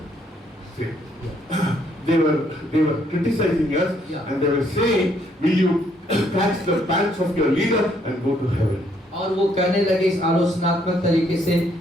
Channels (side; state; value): both; normal; correlation 0.69